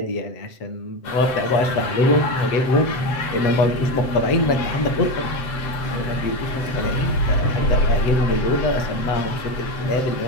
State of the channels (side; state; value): right; late; 7.7 ms